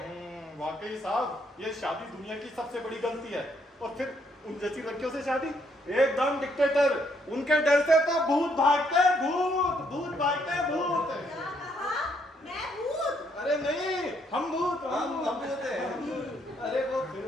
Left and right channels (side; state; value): both; normal; correlation 0.71